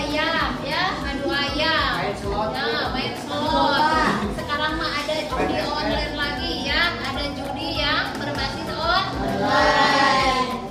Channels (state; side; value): identical; both; correlation 1.00